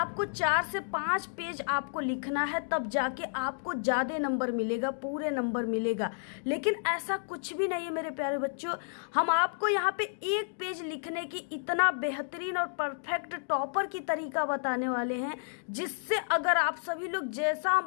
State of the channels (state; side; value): silent; right; digital silence